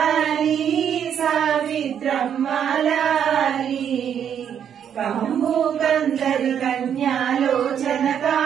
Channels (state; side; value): quieter; left; 8.7 dB